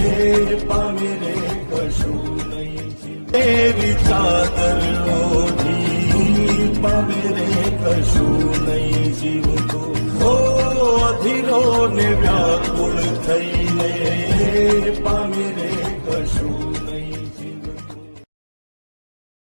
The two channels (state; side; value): inverted; both; correlation -1.00